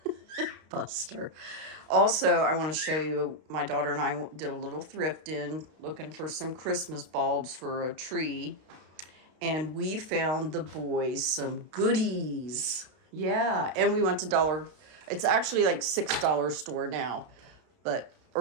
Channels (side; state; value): left; late; 32 ms